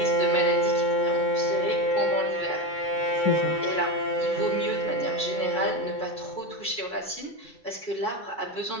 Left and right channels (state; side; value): late; right; 2.3 ms